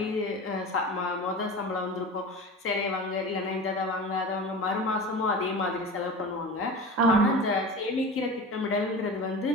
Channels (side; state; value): both; normal; correlation 0.32